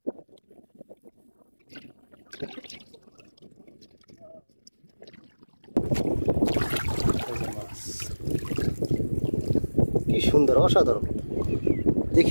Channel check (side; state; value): both; inverted; correlation -1.00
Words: কি সুন্দর, অসাধারণ,